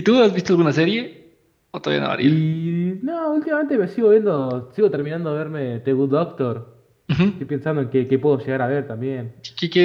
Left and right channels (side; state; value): both; identical; correlation 1.00